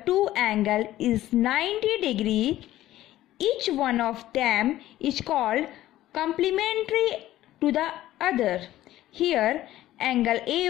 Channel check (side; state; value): right; quieter; 14.5 dB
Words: two angles is 90 degrees, each one of them is called complementary to the other. Here, angle